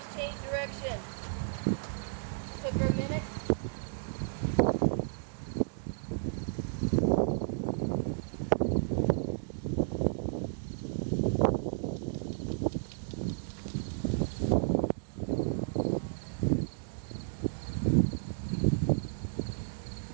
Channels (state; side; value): silent; left; digital silence